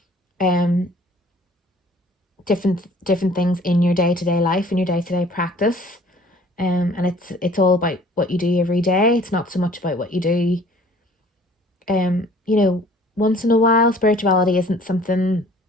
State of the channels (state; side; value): normal; both; correlation 0.52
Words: different things in your day-to-day life, in your day-to-day practice. And it's all about what you do every day. It's not so much about what you do once in a while. Spirituality isn't something